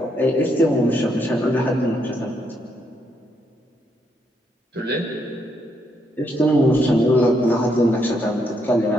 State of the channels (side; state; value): both; normal; correlation 0.76